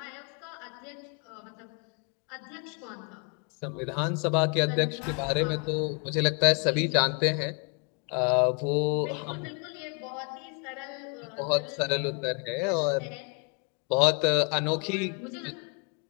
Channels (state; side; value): quieter; right; 36.5 dB